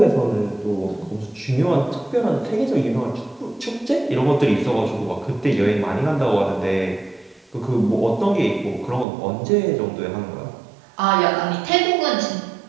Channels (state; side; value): drops out; left; at 9.1 s